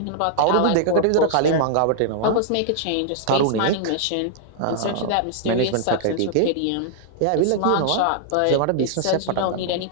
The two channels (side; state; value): both; different; correlation -0.01